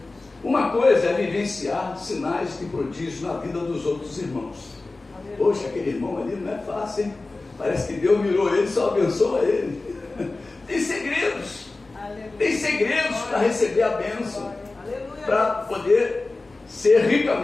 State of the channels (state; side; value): quieter; right; 3.3 dB